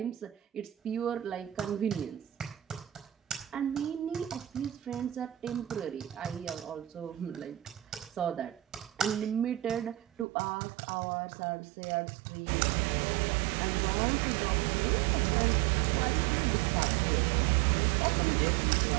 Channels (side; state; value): left; drops out; at 10.2 s